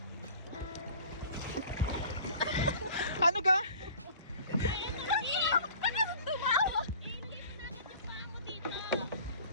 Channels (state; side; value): inverted; both; correlation -0.46